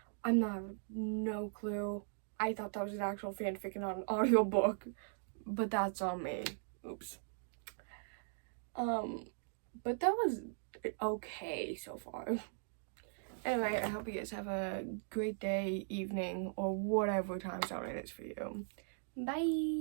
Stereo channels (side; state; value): left; silent; digital silence